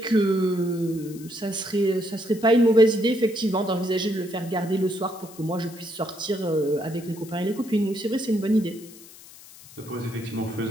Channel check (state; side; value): noise; left; hiss, 20 dB below the sound